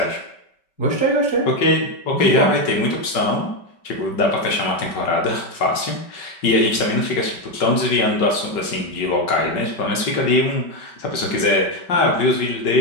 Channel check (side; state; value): right; late; 5.2 ms